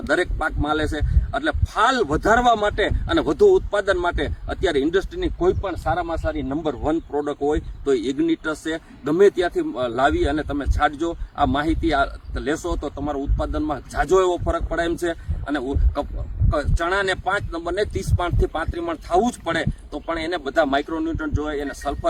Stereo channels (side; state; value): both; identical; correlation 1.00